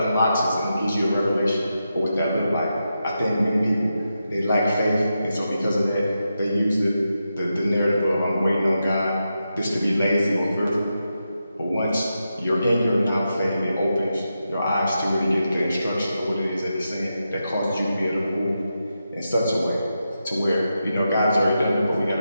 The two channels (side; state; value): both; inverted; correlation -0.87